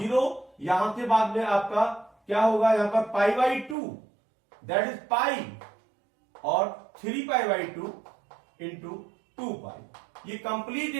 यहां के बाद में आपका क्या होगा, यहां पर π/2 दैट इज पाई और 3π/2 इंटू 2π। ये कंप्लीट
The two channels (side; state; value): left; drops out; at 3.8 s